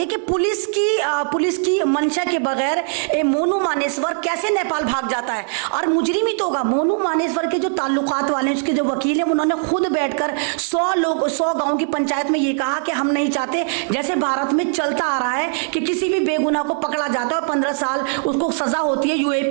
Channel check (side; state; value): left; silent; 62 dB below the other